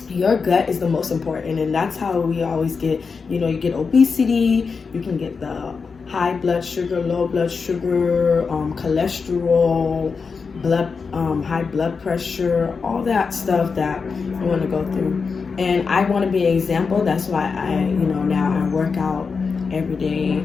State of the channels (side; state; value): right; quieter; 5.1 dB